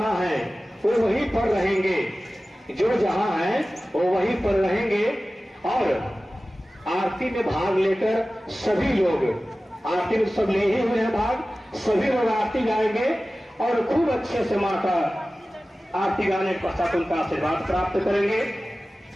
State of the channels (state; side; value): normal; both; correlation 0.96